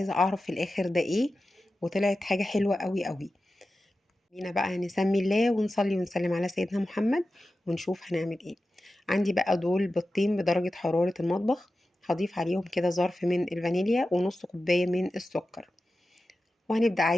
أعرف في الآخر ده إيه، وطلعت حاجة حلوة قوي قوي. بينا بقى نسمي الله ونصلي ونسلم على سيدنا محمد ونشوف هنعمل ايه. عندي بقى دول بيضتين بدرجة حرارة المطبخ، هضيف عليهم كده ظرف من الفانيليا ونص كوباية من السكر، وهنبدأ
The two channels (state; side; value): normal; both; correlation 0.93